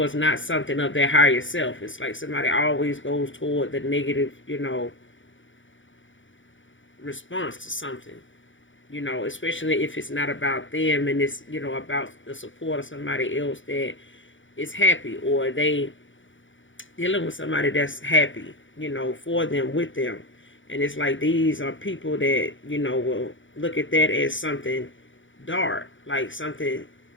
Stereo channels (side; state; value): right; late; 0.56 ms